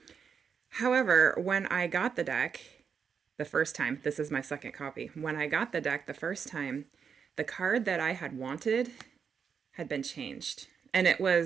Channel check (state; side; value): quieter; left; 6.6 dB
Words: However, when I got the deck the first time, this is my second copy. When I got the deck the first time, the card that I had wanted had been changed. And it